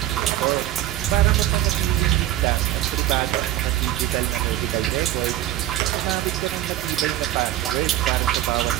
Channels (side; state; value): left; quieter; 13.6 dB